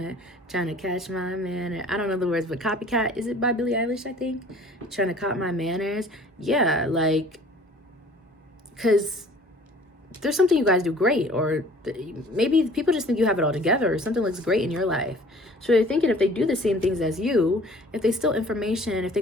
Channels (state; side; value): normal; both; correlation 0.51